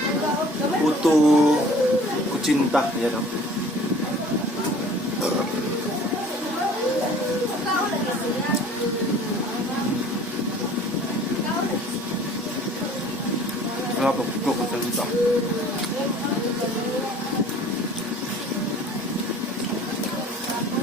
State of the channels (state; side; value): normal; both; correlation 0.49